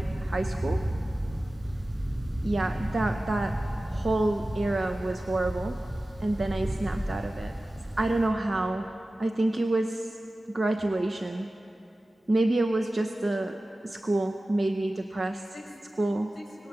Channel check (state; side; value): normal; both; correlation 0.96